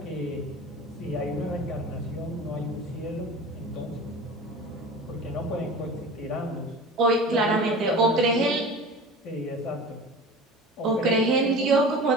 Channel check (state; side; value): normal; both; correlation 0.37